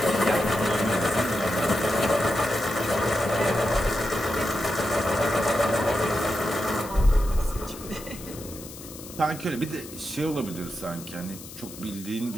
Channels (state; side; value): noise; left; hiss, 15 dB below the sound